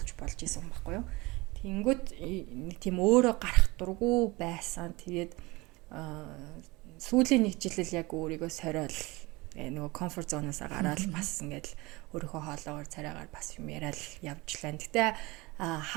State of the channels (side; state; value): left; quieter; 23.1 dB